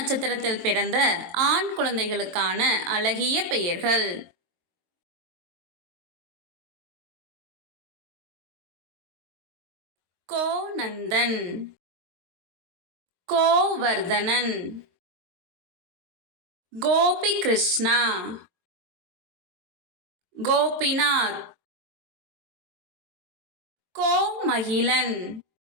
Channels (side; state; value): left; late; 22 ms